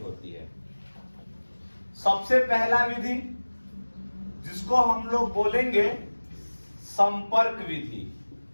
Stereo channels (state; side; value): inverted; both; correlation -1.00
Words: होती है। सबसे पहला विधि जिसको हम लोग बोलेंगे संपर्क विधि।